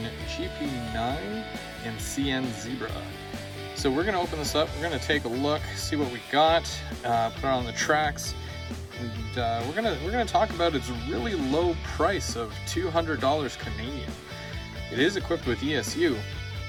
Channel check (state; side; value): identical; both; correlation 1.00